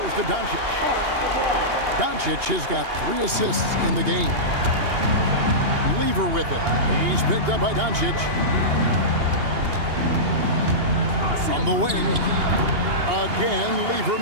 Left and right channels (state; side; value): late; left; 2.8 ms